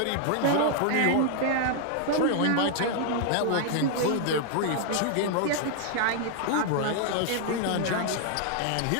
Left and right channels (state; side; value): different; both; correlation 0.00